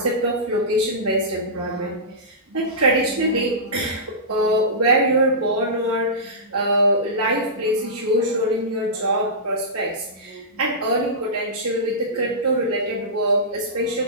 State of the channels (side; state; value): both; normal; correlation -0.17